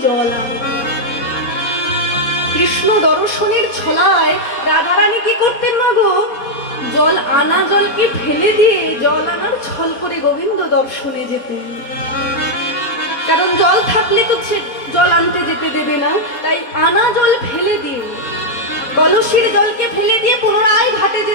জল আনতে। কৃষ্ণ দর্শনের ছলায় রাধারানী কি করতেন না গো, জল আনা জলকে ফেলে দিয়ে জল আনার ছল করে গোবিন্দ দর্শনে যেতেন। কারণ জল থাকলে তো জল আনতে যেতে দেবে না, তাই আনা জল ফেলে দিয়ে, কলসির জলকে ফেলে দিয়ে পুনরায় ঘাটে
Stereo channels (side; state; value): right; late; 4.2 ms